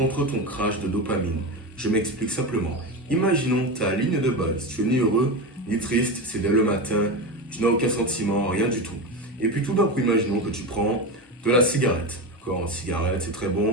ton crash de dopamine. Je m'explique simplement. Imaginons ta ligne de base. Tu es ni heureux ni triste, c'est dès le matin, tu n'as aucun sentiment, rien du tout. Et puis tout d'un coup, imaginons que tu prends de la cigarette. D'accord, une cigarette, c'est très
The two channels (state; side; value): normal; both; correlation 0.20